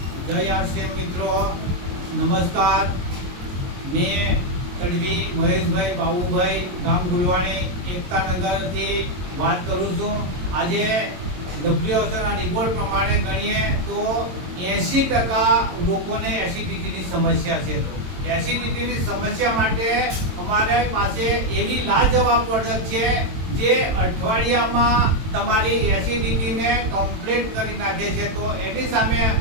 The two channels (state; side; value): late; left; 22 ms